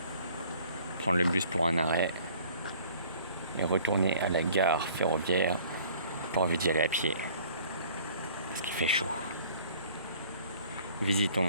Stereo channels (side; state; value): both; inverted; correlation -0.53